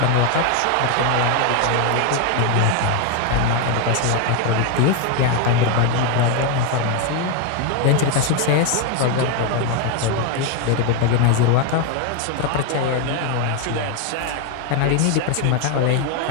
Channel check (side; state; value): both; different; correlation 0.01